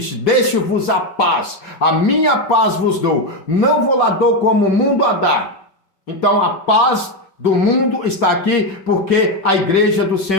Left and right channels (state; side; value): late; right; 5.2 ms